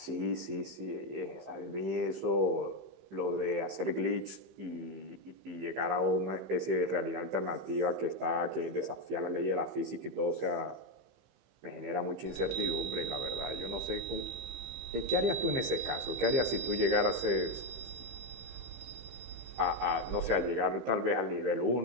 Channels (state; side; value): late; left; 15 ms